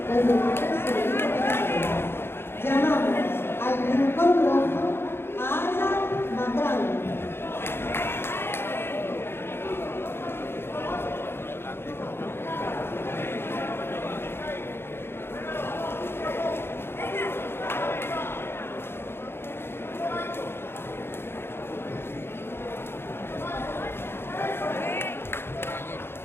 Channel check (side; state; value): right; late; 0.11 ms